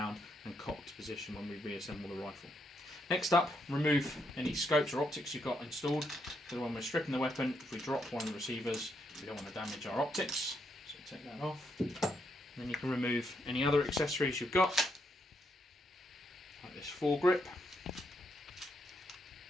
and cocked position when we reassemble the rifle. Next up, remove any scopes or optics you've got installed, because when we're stripping the weapon, if we drop one of the receivers, we don't want to damage our optics, so take that off. And then you can remove any other accessories you've got, like this foregrip.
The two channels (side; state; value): both; normal; correlation 0.78